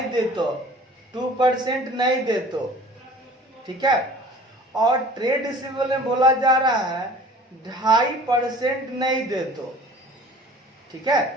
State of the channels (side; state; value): both; normal; correlation 0.47